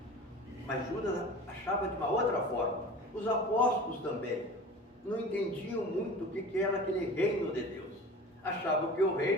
Mas Judas achava de uma outra forma. Os apóstolos também não entendiam muito o que era aquele reino de Deus. Achavam que o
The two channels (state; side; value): normal; both; correlation 0.38